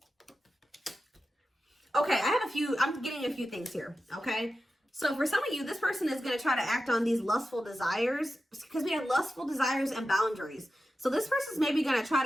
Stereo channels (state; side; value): normal; both; correlation 0.92